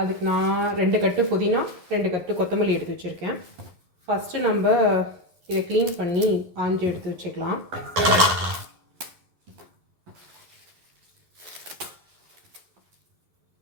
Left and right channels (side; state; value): left; late; 11 ms